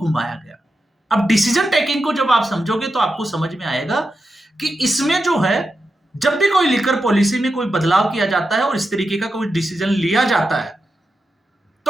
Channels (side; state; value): both; normal; correlation 0.89